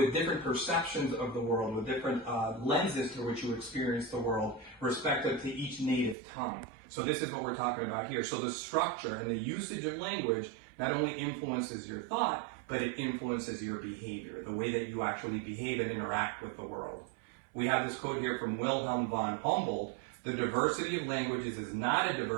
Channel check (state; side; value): drops out; left; at 6.2 s